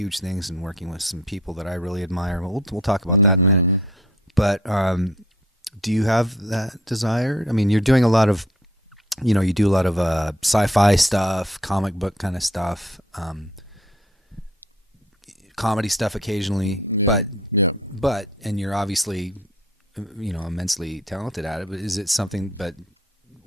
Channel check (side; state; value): both; normal; correlation 0.57